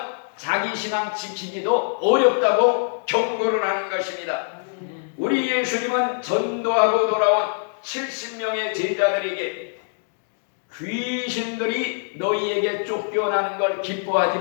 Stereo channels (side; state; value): right; silent; digital silence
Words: 자기 신앙 지키기도 어렵다고 경고를 하는 것입니다. 우리 예수님은 전도하고 돌아온 70명의 제자들에게 귀신들이 너희에게 쫓겨나는 걸 기뻐하지